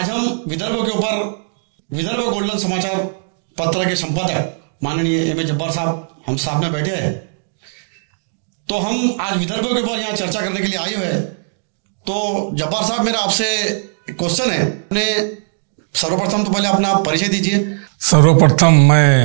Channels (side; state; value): left; silent; digital silence